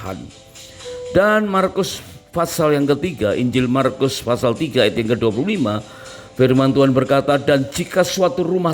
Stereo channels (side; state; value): both; identical; correlation 1.00